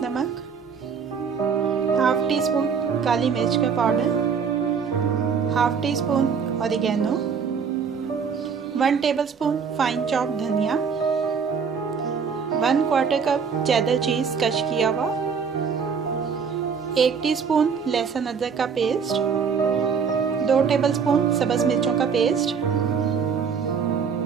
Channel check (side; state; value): left; quieter; 6.2 dB